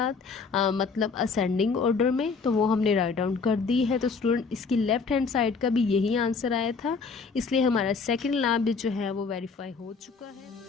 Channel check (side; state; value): right; quieter; 4.9 dB